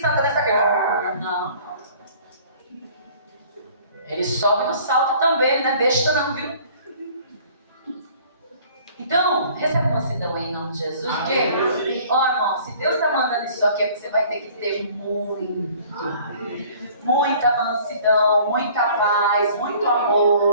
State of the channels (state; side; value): inverted; both; correlation -0.52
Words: está... Não. Ele sobe no salto também, ele não é besta não, viu? Então, recebe mansidão aí em nome de Jesus. Porque, ó irmão, se Deus está mandando isso aqui, é que você vai ter que ter muita mansidão, muita paz, muito